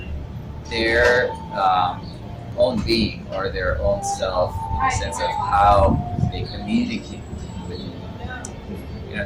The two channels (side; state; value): both; identical; correlation 1.00